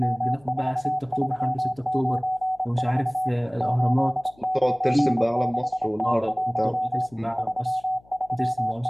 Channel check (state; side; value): noise; left; hum, 29 dB below the sound